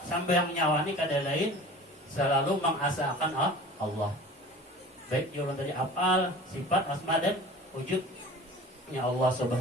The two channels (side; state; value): both; normal; correlation 0.41